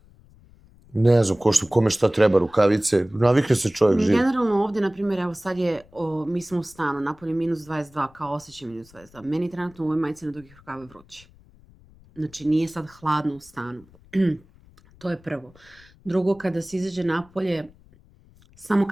Ne znam, kome šta treba, rukavice. Navikne se čovjek živ. Generalno ovdje, na primjer, evo sad je, mi smo u stanu, napolje minus 22, kao osjećaj minus 22. Meni trenutno u ovoj majici na dugih rukava vruće. Znači nije sad hladno u stanu. To je prvo. Drugo, kada se izađe napolje, samo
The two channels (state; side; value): noise; left; rumble, 27 dB below the sound